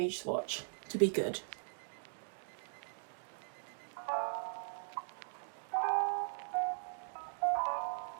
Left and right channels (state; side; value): silent; left; digital silence